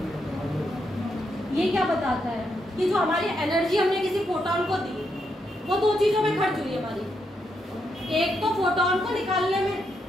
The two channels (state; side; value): normal; both; correlation 0.80